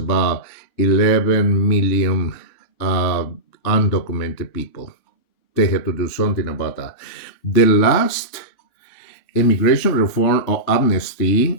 11 million uh, undocumented people. They have to do something about that. The last immigration reform or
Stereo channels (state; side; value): late; right; 3.7 ms